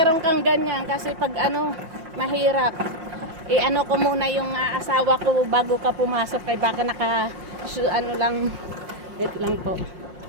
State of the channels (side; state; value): left; late; 5.6 ms